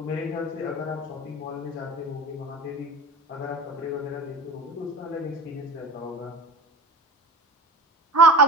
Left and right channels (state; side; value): normal; both; correlation 0.35